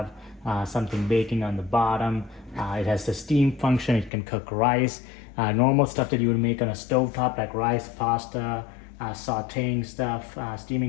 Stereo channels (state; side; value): drops out; right; at 4.1 s